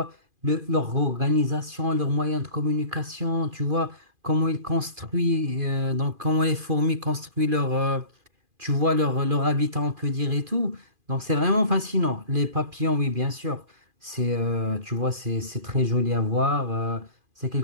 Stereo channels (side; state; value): left; late; 2.4 ms